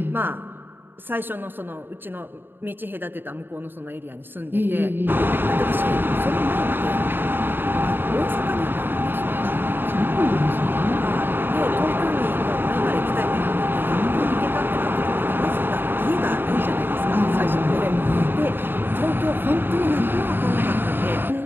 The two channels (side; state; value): left; late; 0.097 ms